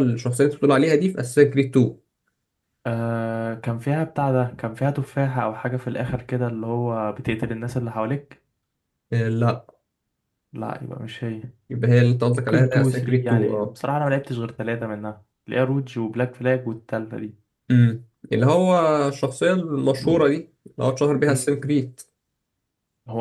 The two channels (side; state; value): both; identical; correlation 1.00